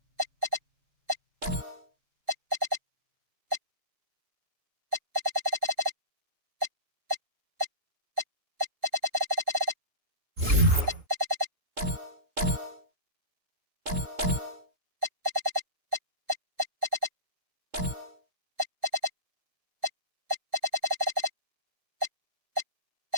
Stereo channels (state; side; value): late; left; 3.7 ms